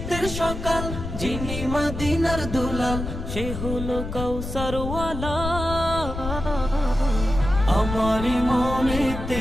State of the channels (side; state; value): left; noise; rumble, 6 dB below the sound